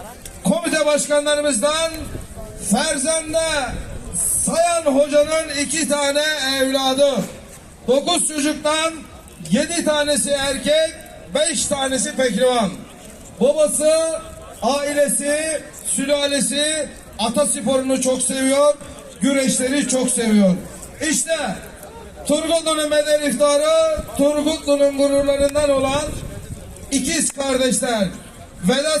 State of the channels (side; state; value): both; identical; correlation 1.00